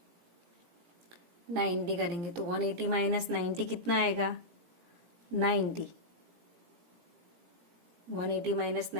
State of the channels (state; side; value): late; left; 17 ms